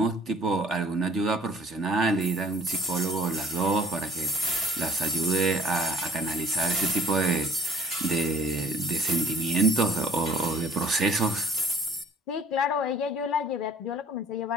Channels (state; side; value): normal; both; correlation 0.53